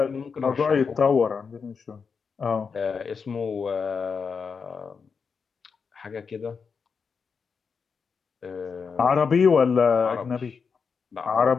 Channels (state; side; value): quieter; right; 5.7 dB